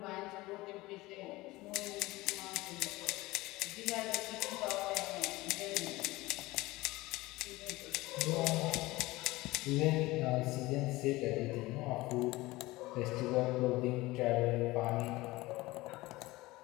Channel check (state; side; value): quieter; right; 20.0 dB